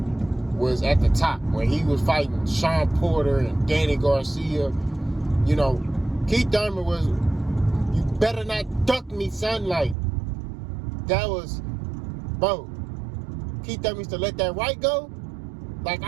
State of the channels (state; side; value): drops out; left; at 10.0 s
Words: was at the top, when he was fighting Sean Porter and Danny Garcia. You know, Keith Thurman was, you better not duck me, son. Like, that was, bro, Keith Thurman used to let that right go. Like,